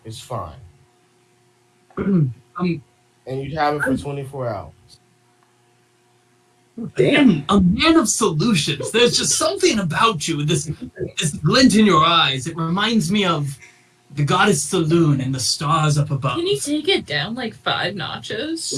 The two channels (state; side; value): identical; both; correlation 1.00